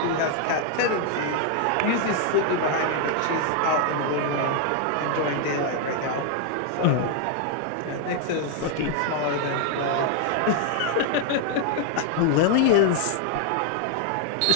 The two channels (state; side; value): different; both; correlation 0.00